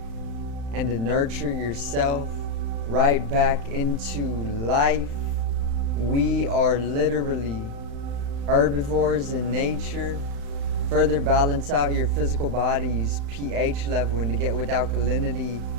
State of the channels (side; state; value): left; late; 35 ms